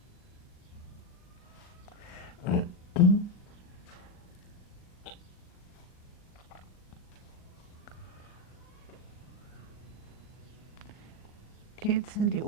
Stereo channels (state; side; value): late; right; 39 ms